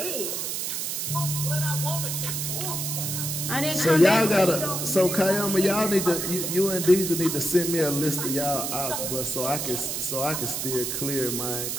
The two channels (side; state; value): right; noise; hiss, 2 dB below the sound